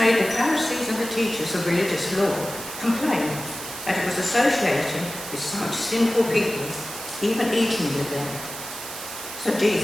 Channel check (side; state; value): right; noise; hiss, 10 dB below the sound